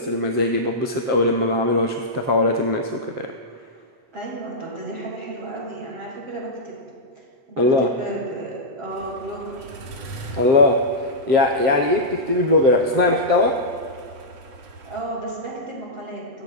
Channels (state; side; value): late; left; 7.7 ms